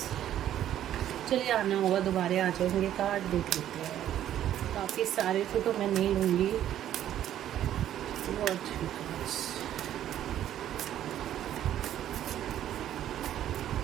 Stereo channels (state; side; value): quieter; left; 11.5 dB